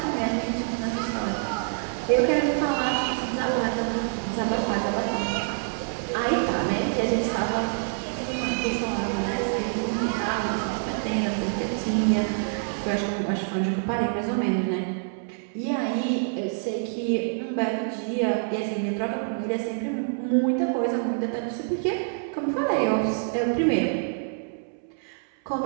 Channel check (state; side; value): silent; left; 61 dB below the other